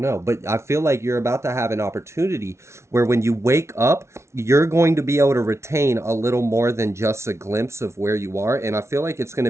know. But I feel like you're about to have an opportunity where when you wake up, you're going to be able to retain a little more than just a glimpse of where you are. And I feel like it's going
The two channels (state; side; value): late; left; 0.13 ms